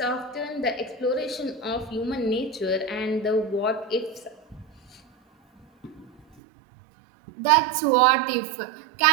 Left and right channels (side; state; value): left; drops out; at 6.2 s